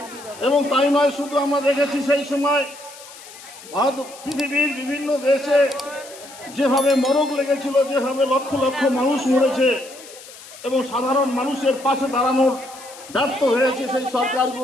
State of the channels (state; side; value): noise; left; hiss, 18 dB below the sound